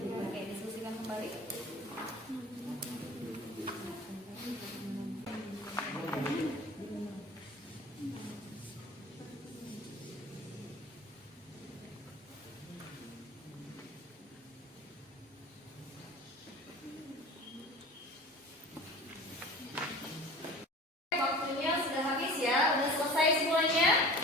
Oke, diskusikan kembali. Waktunya sudah habis ya, udah selesai semuanya?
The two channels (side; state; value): both; normal; correlation 0.40